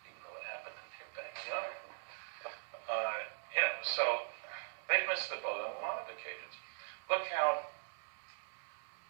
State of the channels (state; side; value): silent; left; 50 dB below the other